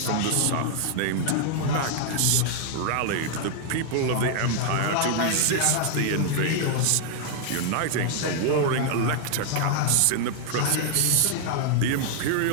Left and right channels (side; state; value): both; different; correlation 0.00